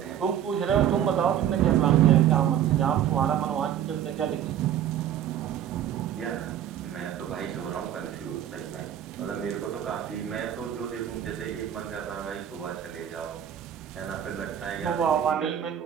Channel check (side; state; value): left; quieter; 10.3 dB